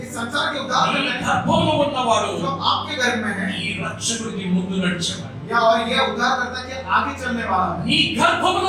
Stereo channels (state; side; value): identical; both; correlation 1.00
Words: इस संसार के उद्धार ఈ करता है। గర్భములో ఉన్నవాడు जो आपके घर में है ఈ రక్షకుడికి ముందు నడిచేవాడు. या और ये उद्धार करता है कि आगे चलने वाला है। నీ గర్భములో